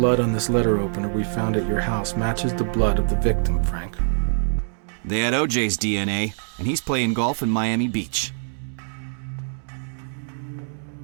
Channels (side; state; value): left; silent; digital silence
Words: on this letter opener we found at your house matches the blood of the victim, Frank. They had OJ's DNA, and he's playing golf in Miami Beach.